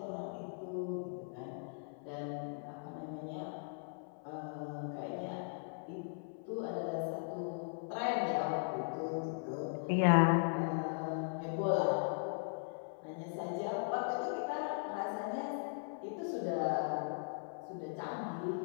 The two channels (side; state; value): right; silent; 52 dB below the other